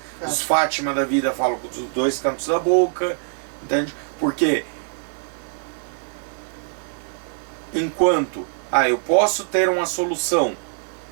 Os Fátima da vida falam com os dois cantos da boca, entende? Porque enquanto eu posso ter uma solução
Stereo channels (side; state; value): left; silent; 63 dB below the other